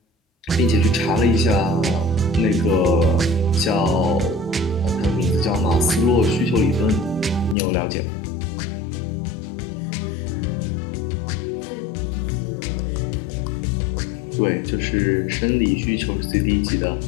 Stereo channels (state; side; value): drops out; right; at 7.6 s